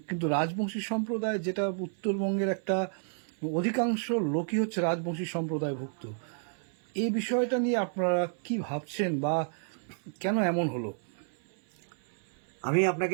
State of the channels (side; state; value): left; silent; 57 dB below the other